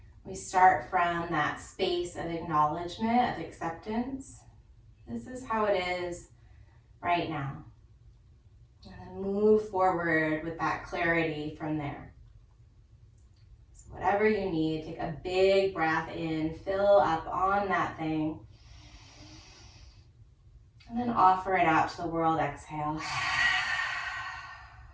We start from that space of acknowledgement, of acceptance. This is how it is right now. And then move forward with that clarity from there. So whatever you need, take a big breath in, fill up on that thing, and then offer it out to the world. Exhale.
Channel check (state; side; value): identical; both; correlation 1.00